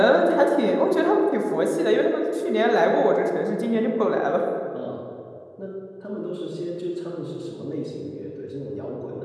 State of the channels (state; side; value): identical; both; correlation 1.00